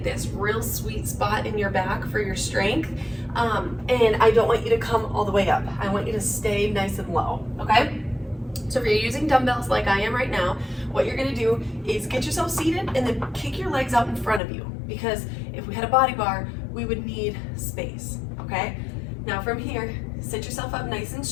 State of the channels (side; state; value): right; drops out; at 14.4 s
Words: this real sweet spot in your back for your strength, and I don't want you to come all the way up. I want you to stay nice and low, okay? So if you're using dumbbells like I am right now, what you're gonna do is get yourself seated and then kick your legs out in front of you, because if we had a body bar, we would need space, okay? Now from here, sit yourself up nice and